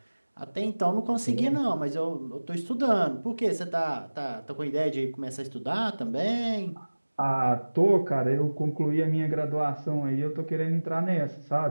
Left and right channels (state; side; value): inverted; both; correlation -1.00